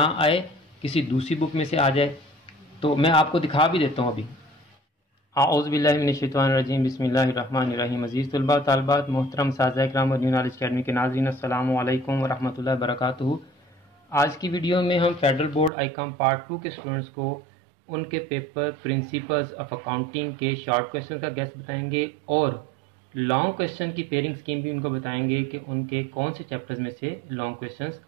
आए, किसी दूसरी बुक में से आ जाए। तो मैं आपको दिखा भी देता हूँ अभी। आऊज़ुबिल्लाहि मिनश्शैतानिर्रजीम, बिस्मिल्लाहिर्रहमानिर्रहीम। अज़ीज़ तलबा तालिबात, मोहतरम साज़ा इकराम और न्यू नॉलेज अकेडमी के नाज़रीन, अस्सलामु अलैकुम व रहमतुल्लाहि व बरकातुहू। आज की वीडियो में हम फेडरल बोर्ड आईकॉम पार्ट 2 के स्टूडेंट्स को उनके पेपर प्रिंसिपल्स ऑफ अकाउंटिंग के शॉर्ट क्वेश्चन का गेस बताएंगे और लॉन्ग क्वेश्चन की पेयरिंग स्कीम भी उनको बताएंगे कि उनके कौन से चैप्टर्स में से लॉन्ग क्वेश्चंस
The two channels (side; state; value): left; drops out; at 15.7 s